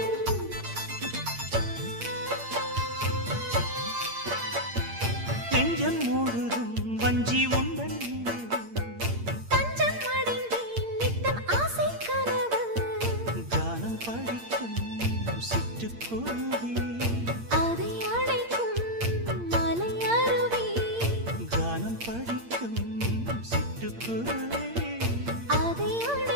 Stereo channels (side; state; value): left; late; 8.7 ms